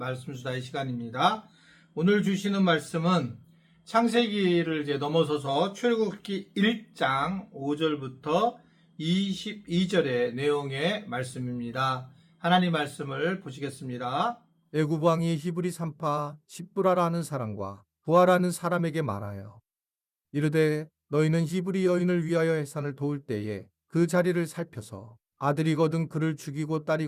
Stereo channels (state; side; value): identical; both; correlation 1.00